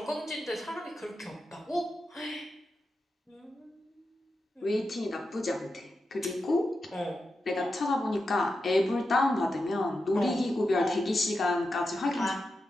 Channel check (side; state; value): both; normal; correlation 0.89